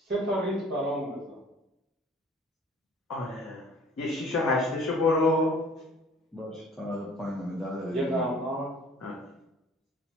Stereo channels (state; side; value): normal; both; correlation 0.51